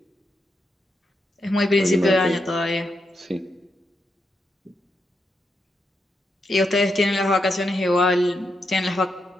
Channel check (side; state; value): both; normal; correlation 0.83